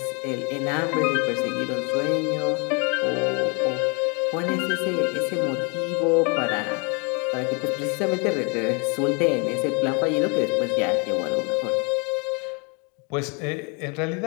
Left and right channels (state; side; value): quieter; right; 33.1 dB